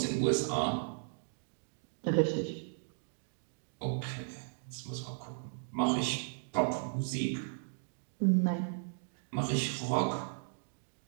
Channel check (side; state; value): left; silent; digital silence